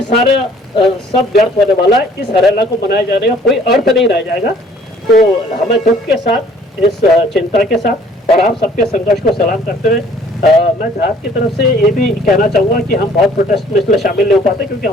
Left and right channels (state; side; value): normal; both; correlation 0.57